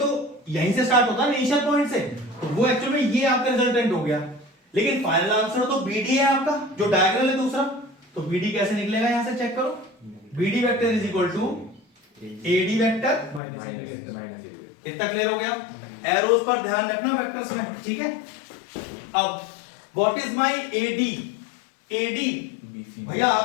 यहीं से स्टार्ट होता है इनिशियल पॉइंट से, तो वो एक्चुअली में ये आपका रिजल्टेंट हो गया। लेकिन फाइनल आंसर तो BD है आपका, जो डायगोनल है दूसरा। तो BD कैसे निकलेगा, यहां से चेक करो। BD vector is equal to AD vector minus. इतना क्लियर हो गया। एरोस पर ध्यान रखना वेक्टर्स में, ठीक है। अब व्हाट इज माय AD भैया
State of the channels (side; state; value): right; drops out; at 13.4 s